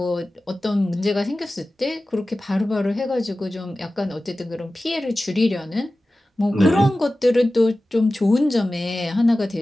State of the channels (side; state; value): both; normal; correlation 0.96